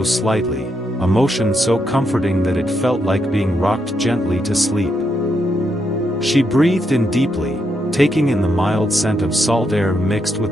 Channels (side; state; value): both; normal; correlation 0.80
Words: slightly, a motion so comforting that it felt like being rocked gently to sleep. She breathed in deeply, taking in the mild scent of salt air mixed